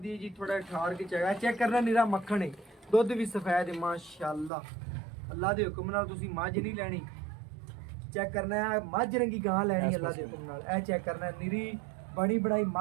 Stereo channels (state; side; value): drops out; left; at 4.5 s